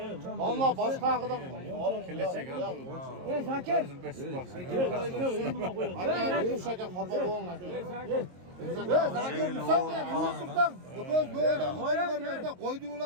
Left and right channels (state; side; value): late; left; 22 ms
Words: Damla başka akıdan. Zakir. Aka Munsaka kafa boğun. Zakir sen ne? Musluktan. Göz böyle vermezden